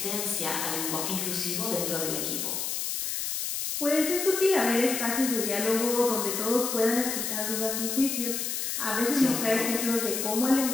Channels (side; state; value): left; noise; hiss, 2 dB below the sound